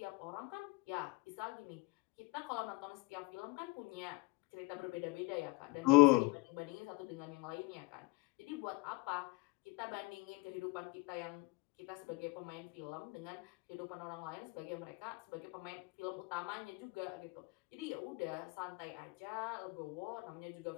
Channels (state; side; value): quieter; right; 23.8 dB